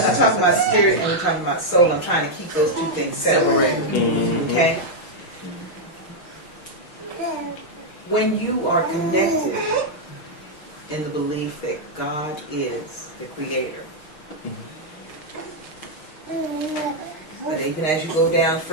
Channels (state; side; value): late; right; 6.4 ms